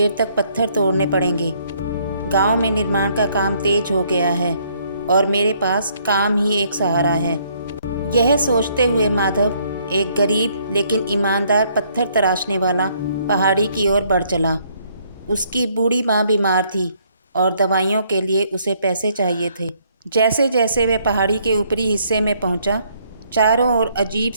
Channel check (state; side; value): inverted; both; correlation -0.67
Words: तक पत्थर तोड़ने पड़ेंगे। गांव में निर्माण का काम तेज हो गया है और मेरे पास काम ही एक सहारा है। यह सोचते हुए माधव एक गरीब लेकिन ईमानदार पत्थर तराशने वाला पहाड़ी की ओर बढ़ चला। उसकी बूढ़ी माँ बीमार थी और दवाइयों के लिए उसे पैसे चाहिए थे। जैसे जैसे वह पहाड़ी के ऊपरी हिस्से में पहुंचा, चारों ओर अजीब